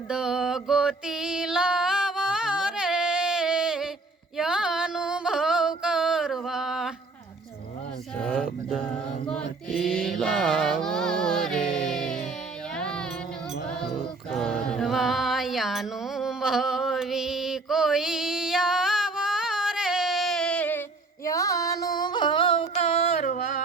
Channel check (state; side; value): quieter; left; 3.5 dB